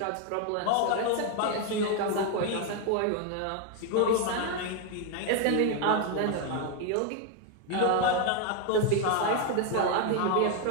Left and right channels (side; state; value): both; different; correlation 0.01